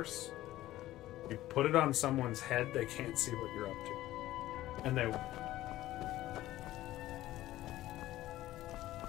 you put it on someone's head, they can't see what you're up to. And they...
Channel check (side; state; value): right; quieter; 15.3 dB